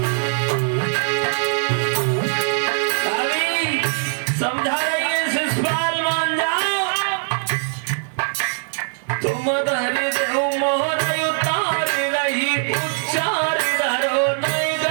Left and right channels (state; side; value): silent; left; 62 dB below the other